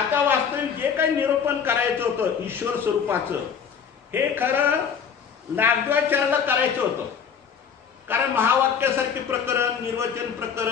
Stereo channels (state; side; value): quieter; right; 7.0 dB